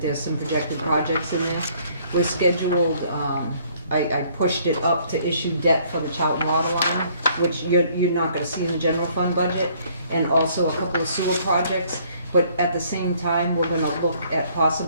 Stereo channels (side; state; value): both; inverted; correlation -0.62